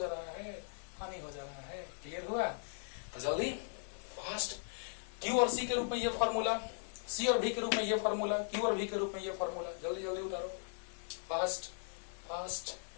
रहा है, हानि हो जा रहा है। क्लियर हुआ? तो जल्दी फास्ट, क्यू और सी के रूप में ये फॉर्मूला, सी और भी के रूप में ये फॉर्मूला, क्यू और भी के रूप में ये फॉर्मूला, जल्दी जल्दी उतारो, फास्ट फास्ट,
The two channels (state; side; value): silent; right; 52 dB below the other